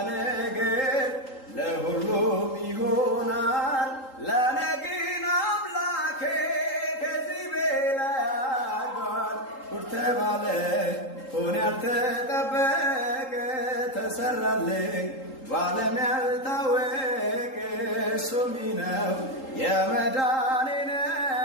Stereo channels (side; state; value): right; late; 3.8 ms